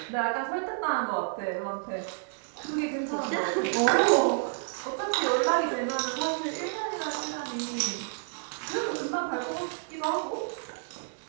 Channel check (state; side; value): silent; left; 58 dB below the other